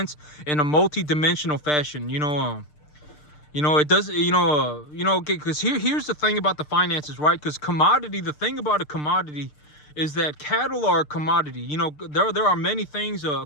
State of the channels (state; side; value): late; right; 6.7 ms